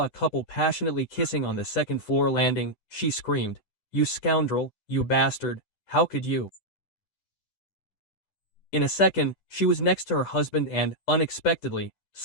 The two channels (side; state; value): right; late; 10 ms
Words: a couple passionately kissing on the second-floor landing, she screamed, "You scoundrel, you bastard, how could you?" In a second, she was next to her husband and, unexpectedly,